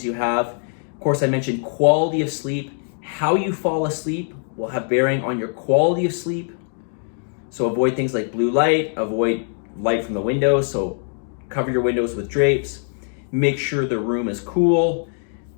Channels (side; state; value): right; silent; 57 dB below the other